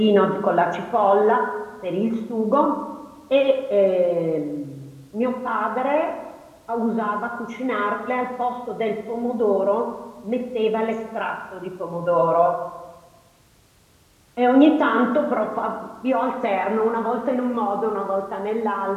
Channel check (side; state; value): both; identical; correlation 1.00